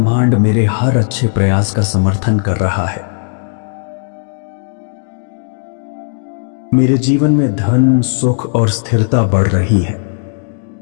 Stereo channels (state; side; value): silent; right; digital silence